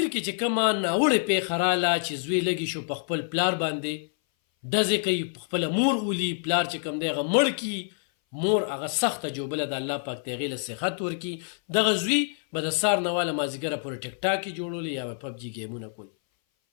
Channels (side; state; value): right; silent; 58 dB below the other